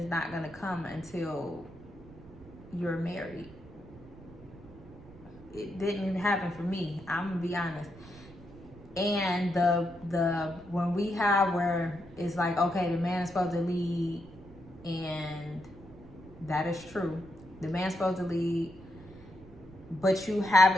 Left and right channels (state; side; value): noise; right; rumble, 20 dB below the sound